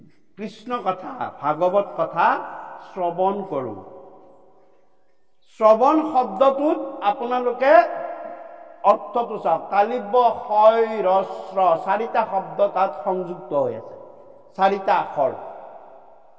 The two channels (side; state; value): both; identical; correlation 1.00